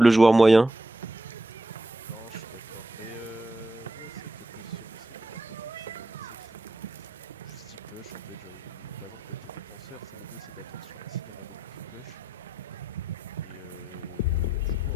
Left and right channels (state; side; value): normal; both; correlation 0.83